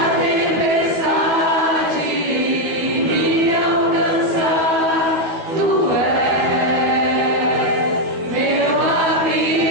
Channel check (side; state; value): left; late; 12 ms